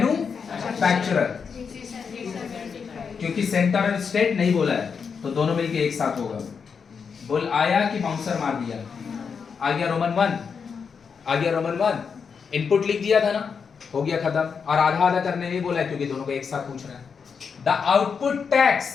क्योंकि सेंटर और स्टेट नहीं बोला है तो दोनों मिलके एक साथ होगा। बोल आया कि बाउंसर मार दिया? आ गया रोमन 1, आ गया रोमन 1। इनपुट लिख दिया था ना, हो गया खत्म। और आधा आधा करने नहीं बोला है क्योंकि दोनों को एक साथ पूछ रहा है। The output tax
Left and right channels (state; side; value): quieter; right; 6.1 dB